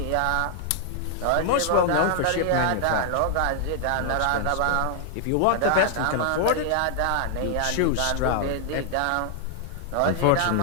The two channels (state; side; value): different; both; correlation 0.00